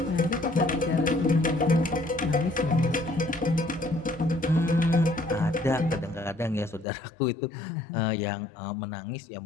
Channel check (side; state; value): right; drops out; at 6.9 s